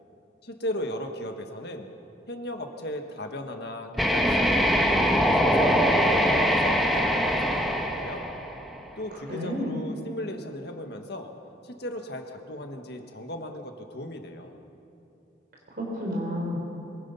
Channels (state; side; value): normal; both; correlation 0.64